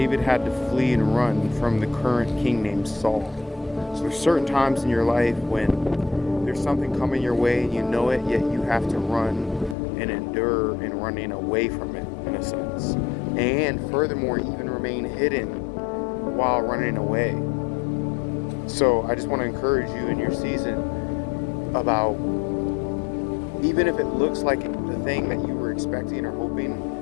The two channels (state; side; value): drops out; right; at 9.8 s